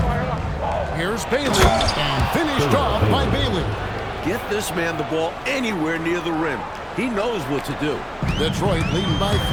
Here's Bailey, and finished off by Bailey. Get this man the ball anywhere near the rim. He knows what to do. Detroit leading by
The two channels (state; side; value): identical; both; correlation 1.00